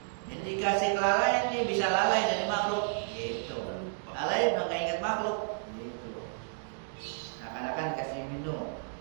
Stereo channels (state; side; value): silent; left; digital silence